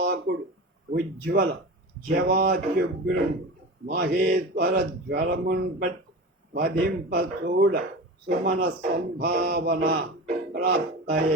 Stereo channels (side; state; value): both; normal; correlation 0.30